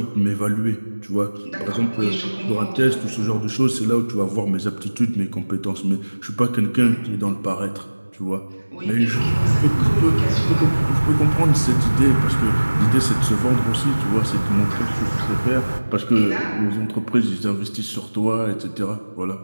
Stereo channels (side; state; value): both; inverted; correlation -1.00